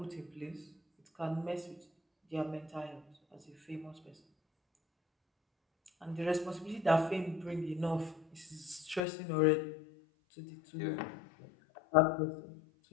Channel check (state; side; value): drops out; right; at 9.0 s